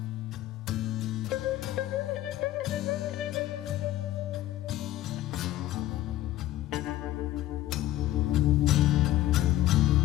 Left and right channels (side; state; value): right; quieter; 14.5 dB